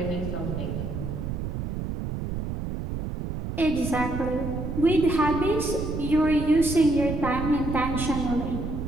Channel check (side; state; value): right; noise; rumble, 4 dB below the sound